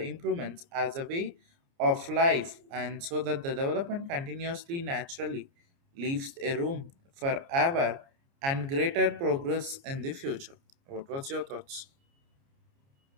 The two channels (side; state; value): left; late; 29 ms